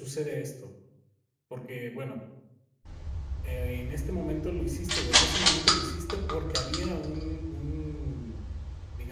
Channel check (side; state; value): both; identical; correlation 1.00